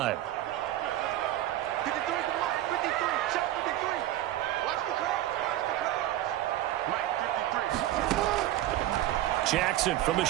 Jackson from the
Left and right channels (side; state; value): left; quieter; 13.8 dB